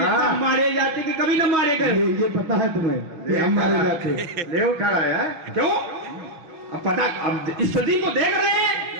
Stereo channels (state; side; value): late; left; 6.3 ms